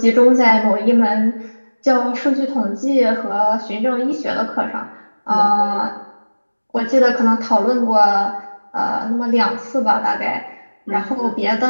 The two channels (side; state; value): both; inverted; correlation -1.00